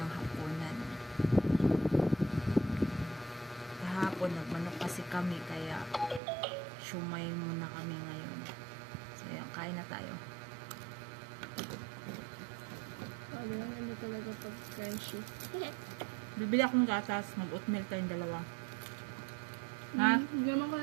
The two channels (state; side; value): drops out; left; at 6.2 s